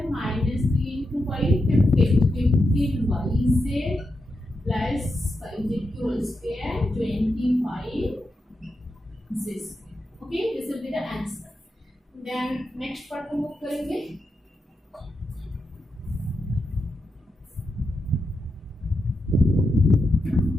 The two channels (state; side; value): normal; both; correlation 0.86